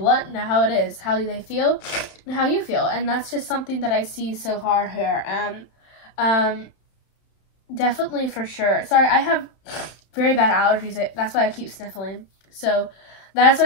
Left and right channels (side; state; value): right; late; 31 ms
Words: and how it is, how they feel, and how you feel. And that's just something that I see so far here. Definitely, for sure. Sorry, I have very bad allergies. That's why I keep sniffling. So that's